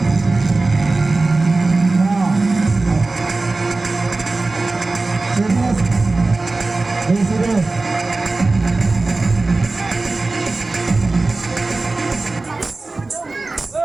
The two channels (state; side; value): quieter; left; 3.4 dB